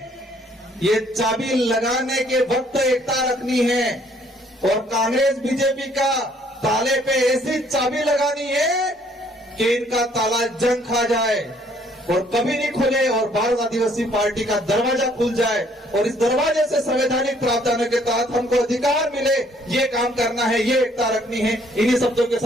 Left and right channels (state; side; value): normal; both; correlation 0.63